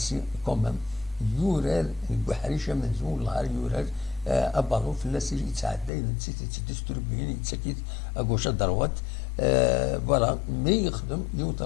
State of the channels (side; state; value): right; drops out; at 5.9 s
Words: كومام يورار بحريشه منزول نهار يورار ابالو فلاس يتعدى نسيت تدستربين يتسكيت اكوش دروات فوالا مي يخدم يوت